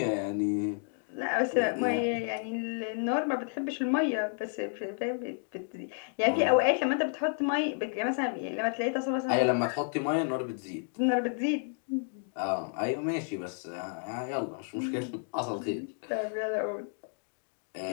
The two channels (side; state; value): right; silent; 57 dB below the other